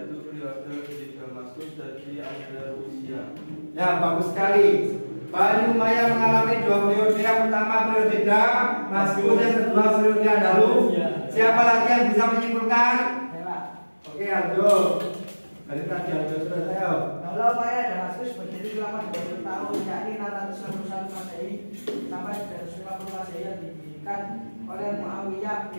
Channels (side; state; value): both; inverted; correlation -1.00